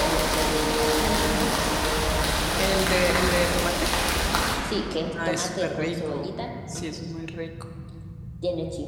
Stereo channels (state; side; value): identical; both; correlation 1.00